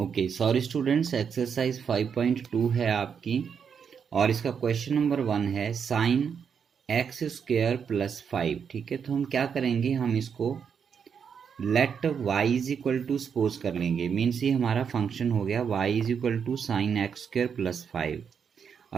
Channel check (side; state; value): left; quieter; 6.9 dB